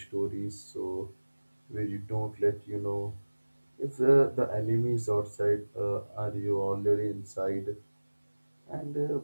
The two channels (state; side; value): inverted; both; correlation -1.00